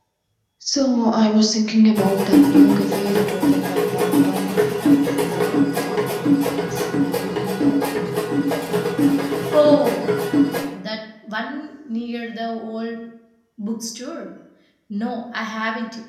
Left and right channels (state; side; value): identical; both; correlation 1.00